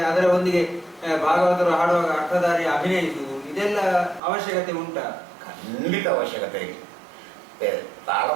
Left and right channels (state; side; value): drops out; left; at 4.2 s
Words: ಅದರ ಒಂದಿಗೆ ಭಾಗವತರು ಹಾಡುವಾಗ ಅರ್ಥಧಾರಿ ಅಭಿನಯಿಸುವುದು, ಇದೆಲ್ಲ ಅವಶ್ಯಕತೆ ಉಂಟಾ? ಖಂಡಿತ ಅವಶ್ಯಕತೆ ಇದೆ.